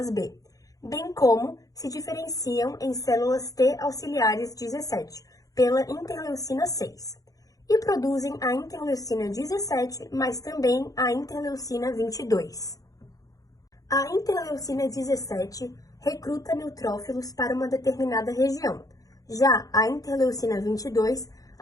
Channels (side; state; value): right; late; 0.17 ms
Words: B, bem como se diferenciam em células T auxiliares 17, pela interleucina 6, e produzem a interleucina 17, mas também a interleucina 22. A interleucina 17 recruta neutrófilos para uma determinada região. Já a interleucina 22